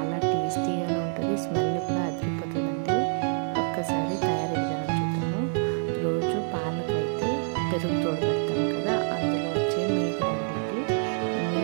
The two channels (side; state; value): left; silent; 60 dB below the other